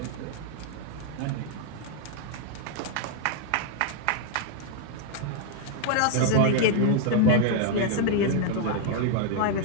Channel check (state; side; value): different; both; correlation 0.00